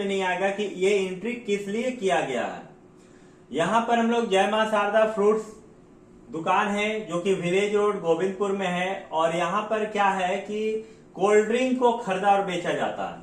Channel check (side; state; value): both; identical; correlation 1.00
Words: नहीं आएगा कि ये एंट्री किस लिए किया गया है। यहाँ पर हम लोग जय मां शारदा फ्रूट्स दुकान है जो कि विलेज रोड गोविंदपुर में है। और यहाँ पर क्या है कि कोल्ड ड्रिंक को खरीदा और बेचा जाता